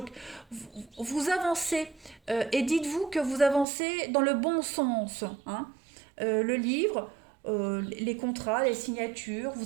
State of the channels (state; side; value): drops out; left; at 3.7 s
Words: vous avancez et dites-vous que vous avancez dans le bon sens. Hein. Le livre, les contrats, les signatures,